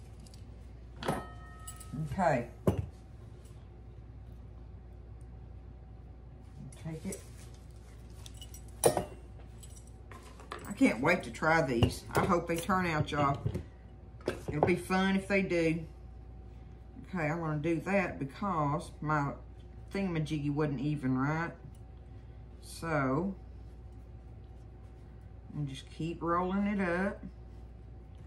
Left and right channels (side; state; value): both; identical; correlation 1.00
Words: Okay. Take it. I can't wait to try these. I hope they turn out, y'all. It'll be fun if they do. Okay, I'm going to do that because my thingamajiggy wasn't even right. So, I'm just keep rolling it up.